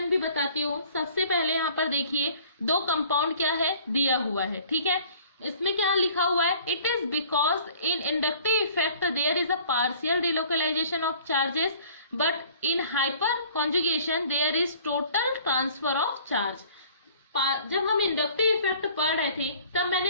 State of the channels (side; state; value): both; inverted; correlation -0.52